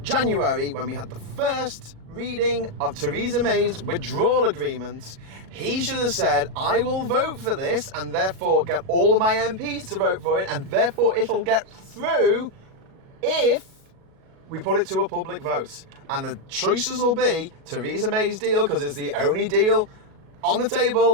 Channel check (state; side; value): late; left; 37 ms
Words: January, when we had the first reading of Theresa May's withdrawal agreement, he should have said, I will vote for this and therefore get all of my MPs to vote for it, and therefore it'll get through if we put it to a public vote. And the choices will be Theresa May's deal, because it's the only deal on the